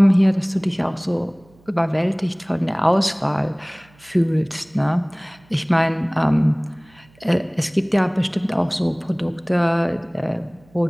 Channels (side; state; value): right; noise; hum, 30 dB below the sound